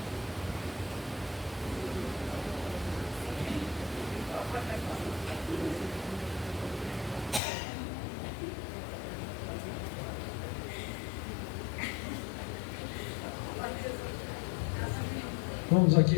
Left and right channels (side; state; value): right; drops out; at 7.4 s